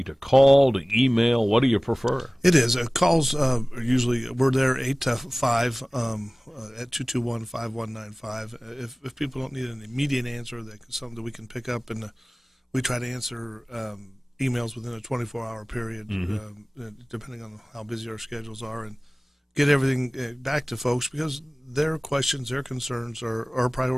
to call, to email? What do you prefer? It is. Calls usually, we're there 8 to 5 at 221-5195. If people don't need an immediate answer, that's something that we can pick up, and we try to answer emails within a 24-hour period, depending on how busy our schedules are, and get everything back to folks, because their questions, their concerns are a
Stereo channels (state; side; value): normal; both; correlation 0.98